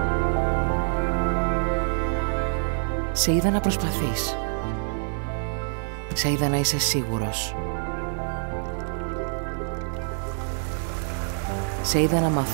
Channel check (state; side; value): silent; left; 60 dB below the other